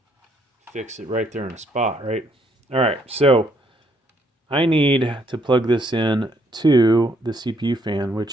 fix it right there in the spot, right? All right, so I need to plug this in to the CPU fan,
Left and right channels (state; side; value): normal; both; correlation 0.70